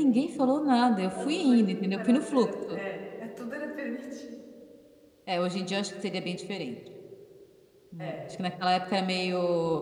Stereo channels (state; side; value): identical; both; correlation 1.00